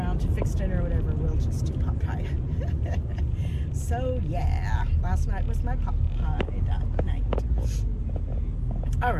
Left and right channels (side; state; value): both; identical; correlation 1.00